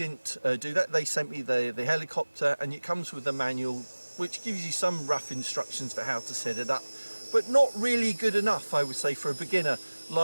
do that. They sent me the helicopter, and it comes with a manual which gives you some rough instructions for how to set it up, but not really good enough, I would say, for a beginner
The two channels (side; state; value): both; inverted; correlation -1.00